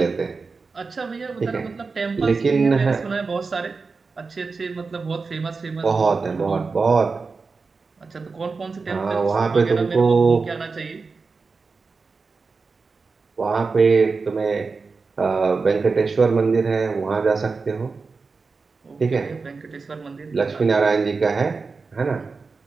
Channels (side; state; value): left; quieter; 4.4 dB